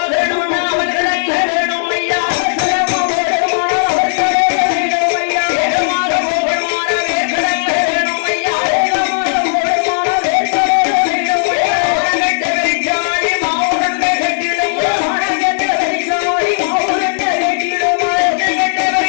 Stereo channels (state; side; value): silent; right; digital silence